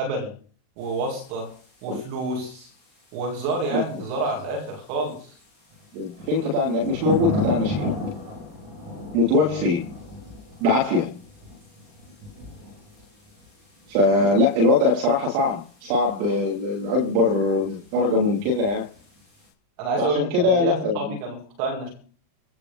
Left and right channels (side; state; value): left; late; 39 ms